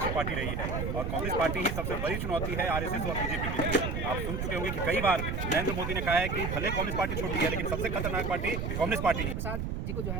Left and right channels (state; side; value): noise; right; rumble, 2 dB below the sound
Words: पार्टी रही है और कांग्रेस पार्टी ही सबसे बड़ी चुनौती है आरएसएस और बीजेपी के लिए। आप सुन चुके होंगे कि कई बार नरेंद्र मोदी ने कहा है कि भले कांग्रेस पार्टी छोटी है लेकिन सबसे खतरनाक पार्टी कांग्रेस पार्टी है। प्रसाद जी को जो